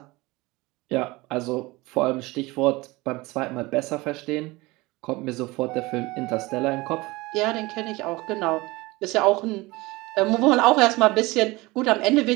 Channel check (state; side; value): quieter; left; 22.1 dB